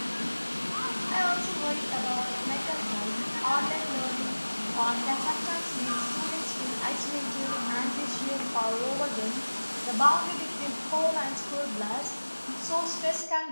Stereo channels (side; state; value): both; inverted; correlation -1.00